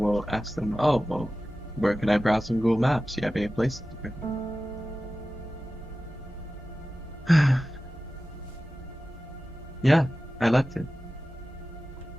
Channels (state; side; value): normal; both; correlation 0.95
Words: ask them, oh, well, where can I browse on Google Maps? Do you have any places? Yeah, I liked it.